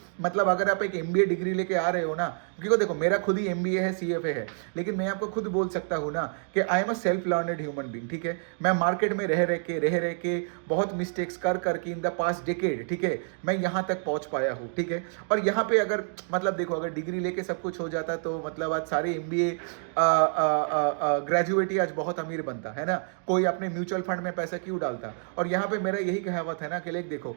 मतलब अगर आप एक MBA डिग्री लेके आ रहे हो ना, क्योंकि देखो मेरा खुद ही MBA है, CFA है, लेकिन मैं आपको खुद बोल सकता हूं ना कि I am a self learned human being, ठीक है। मैं मार्केट में रह रह के बहुत मिस्टेक्स कर करके इन द पास्ट डिकेड, ठीक है, मैं यहां तक पहुंच पाया हूं, ठीक है। और यहां पे अगर मतलब देखो, अगर डिग्री लेके सब कुछ हो जाता तो मतलब आज सारे MBA ग्रेजुएट ही आज बहुत अमीर बनता है ना। कोई अपने म्यूचुअल फंड में पैसा क्यों डालता। और यहाँ पे मेरा यही कहावत है ना कि लेक देखो,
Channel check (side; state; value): left; silent; 59 dB below the other